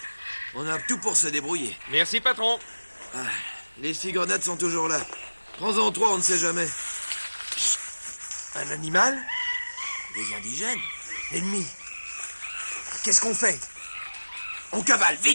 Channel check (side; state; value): both; inverted; correlation -1.00